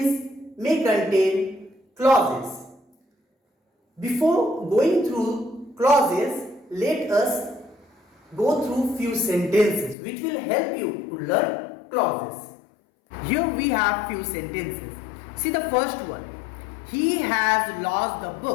may contain clauses. Before going through clauses, let us go through few sentences which will help you to learn clauses. Here we have few sentences. See the first one. He has lost the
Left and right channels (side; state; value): right; drops out; at 10.0 s